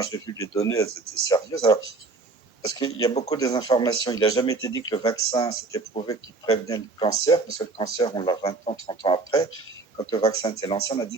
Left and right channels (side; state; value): left; quieter; 3.8 dB